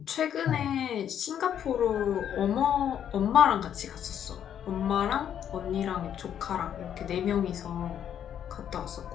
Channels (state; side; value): quieter; right; 9.4 dB